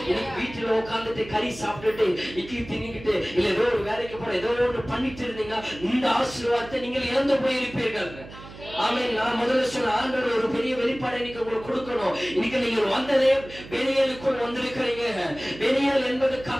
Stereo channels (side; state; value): right; noise; hum, 16 dB below the sound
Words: இன்னைக்கு வீட்டில் உட்கார்ந்துட்டு கறி சாப்பிட்டுட்டு இட்லி தின்னிக்கிட்டு இல்ல ஏதோ ஒரு வேலைக்கு போற ஏதோ ஒன்று பண்ணிட்டு இருந்தீங்க, இந்த ஆசீர்வாதத்தை நீங்கள் இழந்து போயிருப்பீர்கள். ஆமென். நான் முதல்ல சொன்ன ஆண்டவர் ஒரு பெரிய வெளிப்பாடை இன்னைக்கு உங்களுக்கு கொடுக்கணும். இன்னைக்கு நீங்க வந்ததே பெனியலுக்குள் வந்திருக்கிறீங்க. பெனியல் என்பது